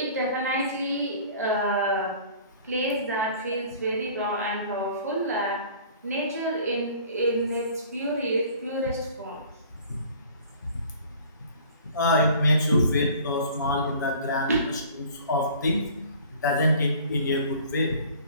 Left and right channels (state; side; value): inverted; both; correlation -0.48